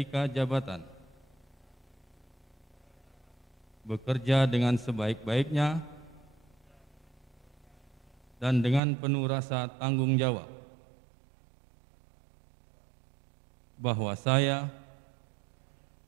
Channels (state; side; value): drops out; left; at 8.8 s